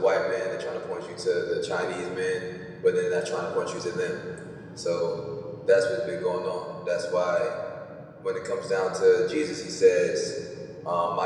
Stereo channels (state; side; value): identical; both; correlation 1.00